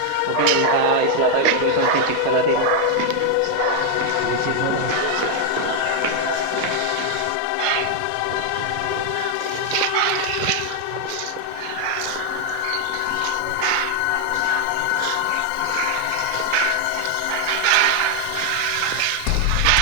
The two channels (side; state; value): both; different; correlation 0.00